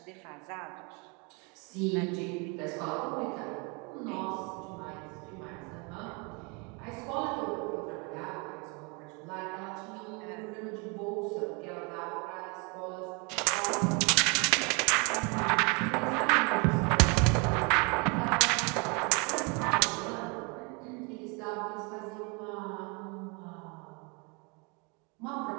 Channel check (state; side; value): quieter; left; 31.5 dB